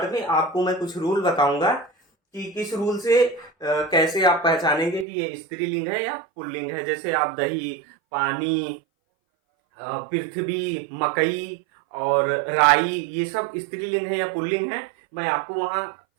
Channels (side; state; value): left; drops out; at 5.1 s